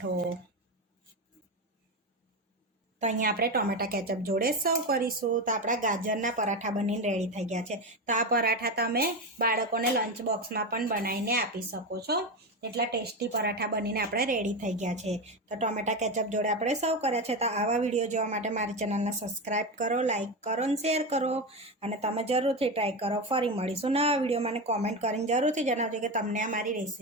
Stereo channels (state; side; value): normal; both; correlation 0.17